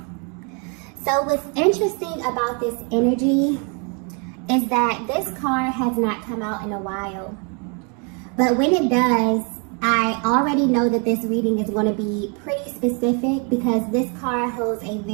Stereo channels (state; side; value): quieter; left; 36.3 dB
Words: So what's interesting about this energy is that this card has not come out in a while. But when it does, I already know that this reading is going to be pretty specific because this card holds a